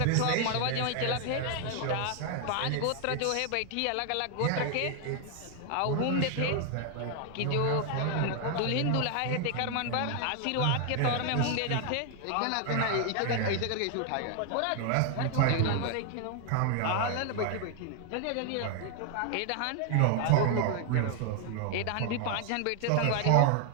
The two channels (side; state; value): both; different; correlation 0.00